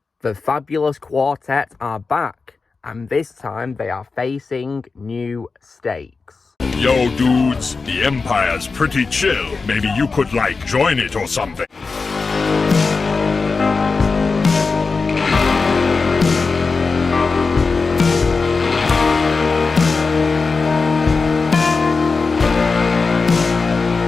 The fabulous quartet are back, and this time they are facing new stakes. Yo, dudes, the Empire's pretty chill. Maybe you could, join it or something.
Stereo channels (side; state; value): right; quieter; 4.4 dB